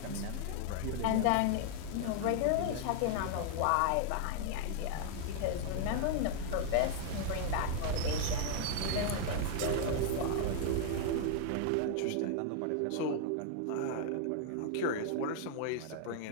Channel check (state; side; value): different; both; correlation 0.00